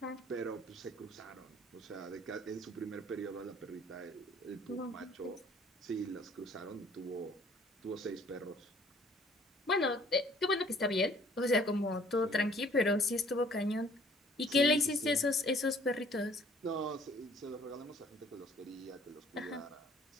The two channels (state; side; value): normal; both; correlation 0.57